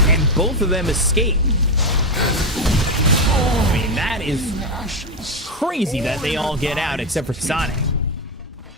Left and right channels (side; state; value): both; normal; correlation 0.10